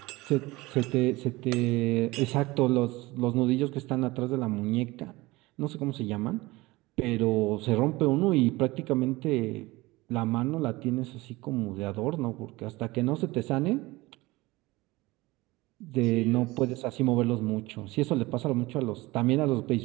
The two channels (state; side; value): quieter; left; 21.0 dB